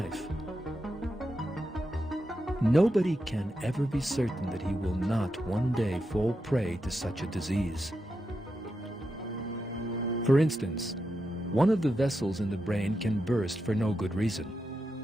Nobody can ever be certain that he will not one day fall prey to such a disease. For instance, one of the vessels in the brain can burst for no good reason.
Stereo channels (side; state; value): both; normal; correlation 0.87